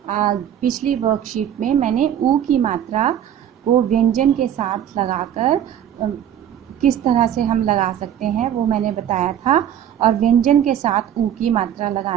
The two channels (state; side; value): quieter; left; 10.1 dB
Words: पिछली वर्कशीट में मैंने ऊ की मात्रा को व्यंजन के साथ लगाकर किस तरह से हम लगा सकते हैं वो मैंने बताया था, और व्यंजन के साथ ऊ की मात्रा